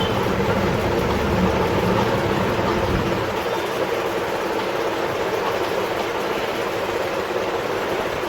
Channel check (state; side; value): identical; both; correlation 1.00